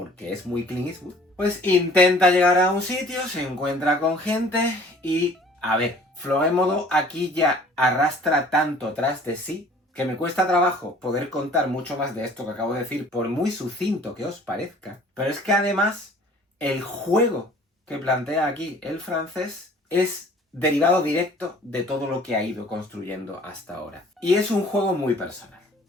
es muy Clint Eastwood, pues intenta llegar a un sitio, se encuentra con gente y, a ver, Florémodo aquí ya arrastra tanto tras de sí que me cuesta trabajo poder contar mucho más de esto que acabo de decir, por muy sucinto que os parezca. Pero es que además, el juego que plantea aquí el francés es derivado directo de todo lo que ha ido construyendo hasta ahora. Y es un juego muy personal.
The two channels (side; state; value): both; normal; correlation 0.52